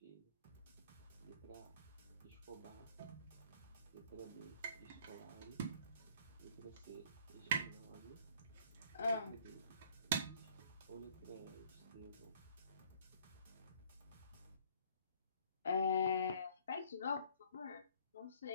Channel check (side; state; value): both; inverted; correlation -0.58